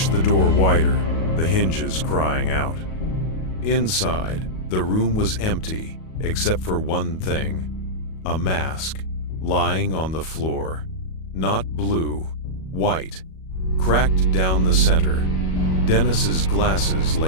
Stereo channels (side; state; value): right; late; 37 ms